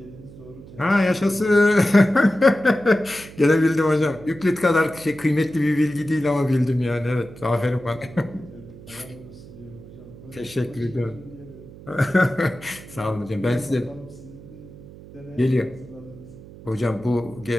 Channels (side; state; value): right; noise; hum, 18 dB below the sound